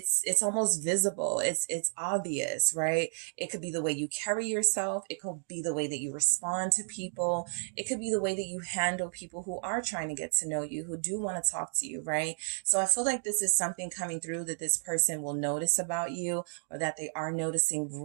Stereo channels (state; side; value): silent; left; digital silence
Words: almost visible. It's obvious, right? It could be the way you carry yourself. It could be the way that you respond to people. It could be the way that you handle people who are trying to get to know you, who do want to talk to you, right? So I feel like this is something coming through that this person will notice about you, or that they are noticing